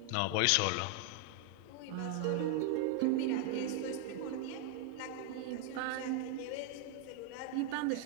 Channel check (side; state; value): both; different; correlation 0.00